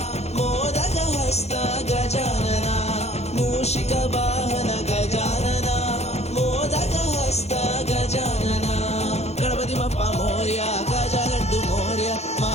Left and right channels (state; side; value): late; right; 0.31 ms